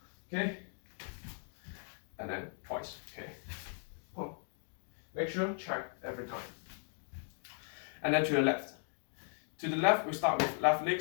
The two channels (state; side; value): silent; right; 53 dB below the other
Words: Okay, and then twice. Okay, boom. Make sure check every time. And then to the left. To the left, we start with left